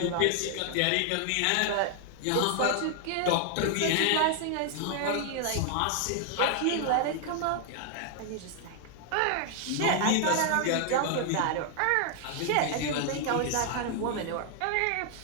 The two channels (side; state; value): both; different; correlation 0.00